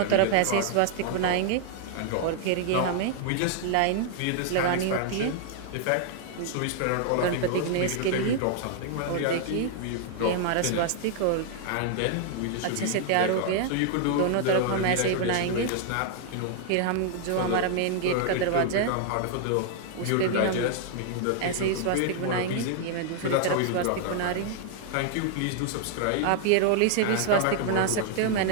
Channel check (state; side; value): different; both; correlation -0.01